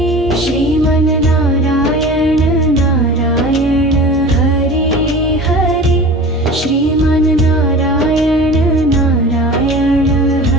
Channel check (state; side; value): normal; both; correlation 0.37